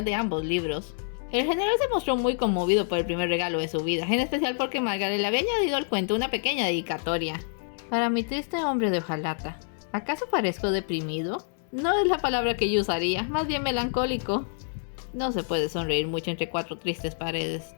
de ambos libros. El general se mostró muy conmovido por el primer regalo de su vida, en especial porque Margaret le había añadido al cuento una pequeña dedicatoria. Para mi triste hombre de hojalata. ¿Acaso parezco deprimido? No es la palabra que yo usaría, más bien melancólico. No se puede sonreír mucho entre 4 tristes paredes,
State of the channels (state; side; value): silent; right; 60 dB below the other